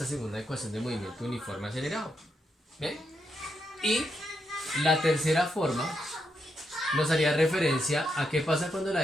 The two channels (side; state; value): both; normal; correlation 0.82